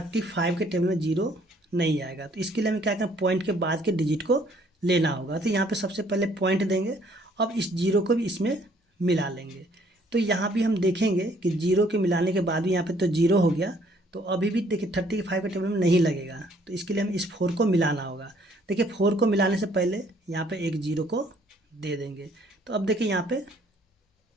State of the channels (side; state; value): both; normal; correlation 0.62